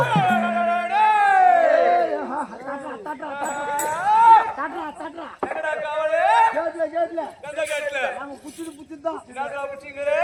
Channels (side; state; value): both; identical; correlation 1.00